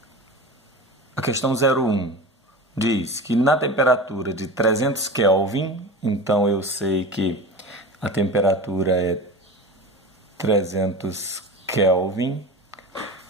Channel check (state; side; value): normal; both; correlation 0.31